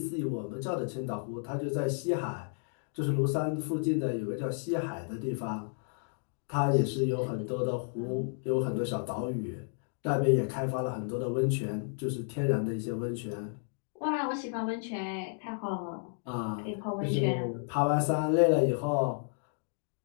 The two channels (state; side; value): silent; right; digital silence